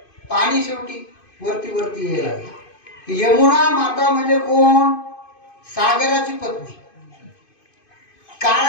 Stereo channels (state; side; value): late; right; 2.5 ms